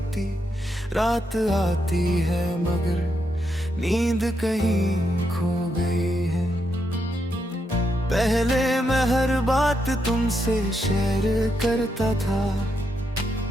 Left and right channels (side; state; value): both; normal; correlation 0.81